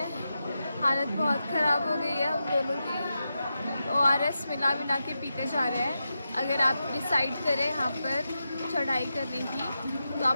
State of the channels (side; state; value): both; inverted; correlation -0.89